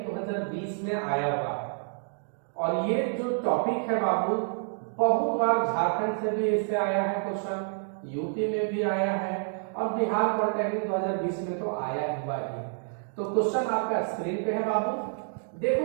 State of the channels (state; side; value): silent; left; 59 dB below the other